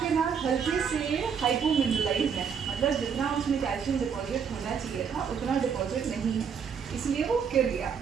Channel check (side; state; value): left; quieter; 6.9 dB